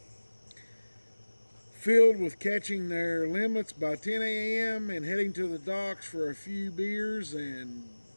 filled with catching their limits by 10 a.m. and heading to the docks for a few beers and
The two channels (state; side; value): inverted; both; correlation -1.00